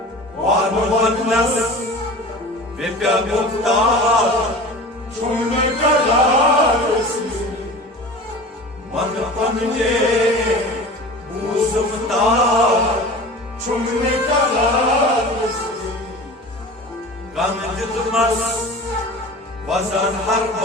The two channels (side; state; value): both; normal; correlation 0.37